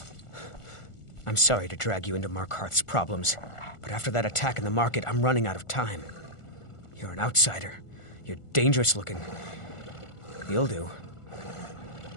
I'm sorry to drag you into Markarth's problems, but after that attack in the market, I'm running out of time. You're an outsider. You're dangerous looking. You'll do.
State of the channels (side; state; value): right; late; 1.4 ms